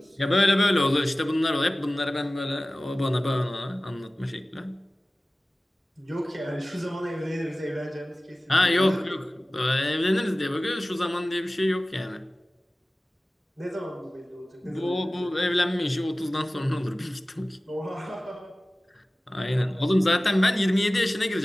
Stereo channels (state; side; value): normal; both; correlation 0.97